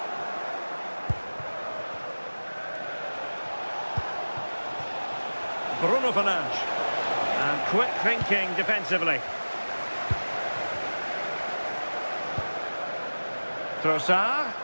Bruno Fernandes. And quick thinking defensively. Trossard.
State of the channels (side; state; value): both; inverted; correlation -1.00